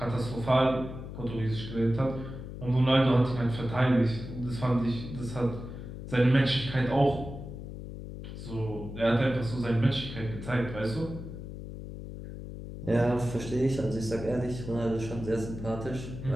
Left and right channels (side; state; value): left; noise; hum, 10 dB below the sound